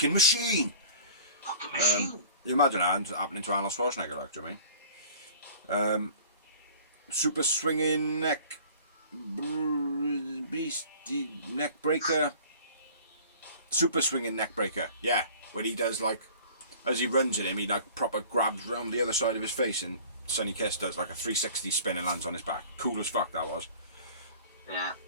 machine. Fucking machine. You imagine that happening to Arnold Schwarzenegger, like, do you know what I mean? Super swinging neck breaker. Super swinging neck breaker. Yeah, when he does like, as he runs at him, he like proper grabs round the other side of his face, and Sonny Kiss does like a 360 spin and lands on his back. Cool as fuck that was. Yeah.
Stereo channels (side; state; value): both; inverted; correlation -0.46